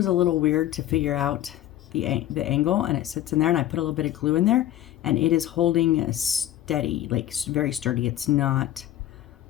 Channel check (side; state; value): right; quieter; 13.1 dB